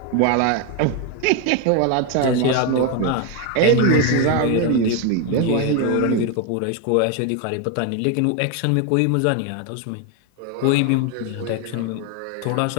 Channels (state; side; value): different; both; correlation 0.01